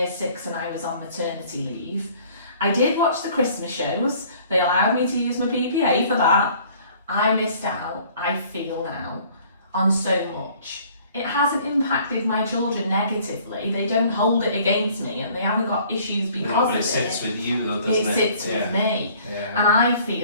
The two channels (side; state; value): both; inverted; correlation -0.55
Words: 6 and I was on maternity leave. I did watch the Christmas shows, they allowed me to use my PPA for that. I missed out, I feel now, on so much. It hasn't impacted my children negatively, they don't hold it against me, and they haven't got issues because of it. It sits with you though, doesn't it? It sits with me. And I